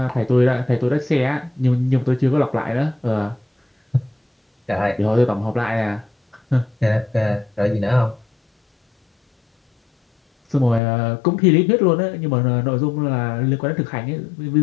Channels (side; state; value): right; drops out; at 10.8 s